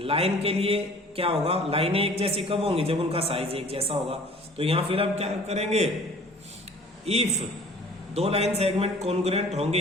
के लिए क्या होगा? लाइनें एक जैसी कब होंगी? जब उनका साइज एक जैसा होगा। तो यहां फिर हम क्या करेंगे? इफ दो लाइन सेगमेंट कॉन्ग्रुएंट होंगे,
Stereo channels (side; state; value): both; normal; correlation 0.49